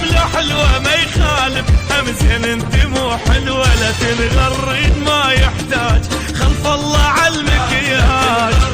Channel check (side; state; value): both; identical; correlation 1.00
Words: لو حلوة ما يخالف هم زين انت مو حلوة، لا تنغرين ما يحتاج خلف الله عالمكياج،